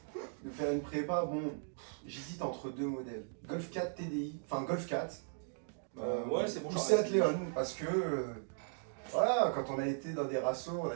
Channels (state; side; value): silent; left; digital silence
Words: de faire une prépa, bon, j'hésite entre deux modèles. Golf 4 TDI, enfin Golf 4. Ouais, c'est bon, Ou j'aurais Seat essayé. Leon, parce que voilà, quand on a été dans des rassos, on a